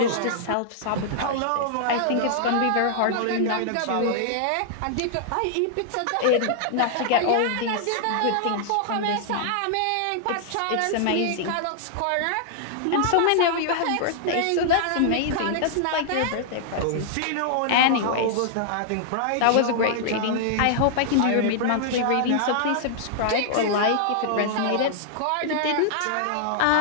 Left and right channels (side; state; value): both; different; correlation -0.01